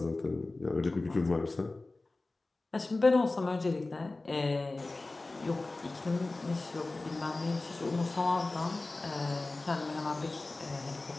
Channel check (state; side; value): quieter; right; 3.2 dB